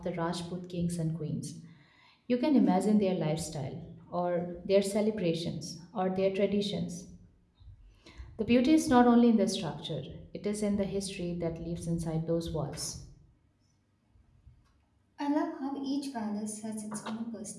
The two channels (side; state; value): both; identical; correlation 1.00